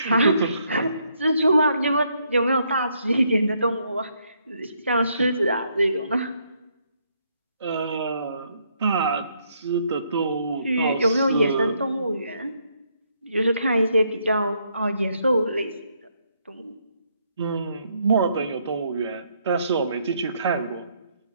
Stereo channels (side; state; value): both; inverted; correlation -0.73